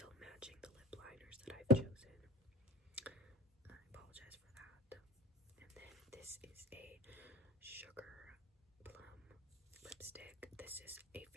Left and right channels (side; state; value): both; normal; correlation 0.30